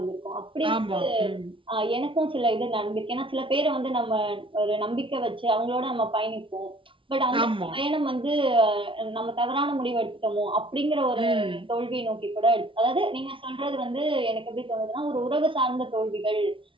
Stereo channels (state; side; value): late; left; 0.25 ms